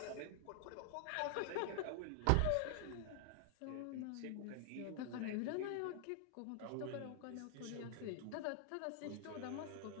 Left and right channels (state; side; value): different; both; correlation 0.00